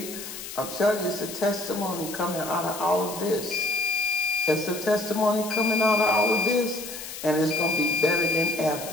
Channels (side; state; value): left; noise; hiss, 10 dB below the sound